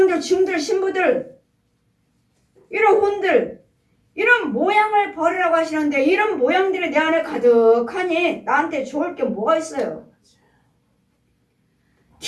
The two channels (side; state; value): both; identical; correlation 1.00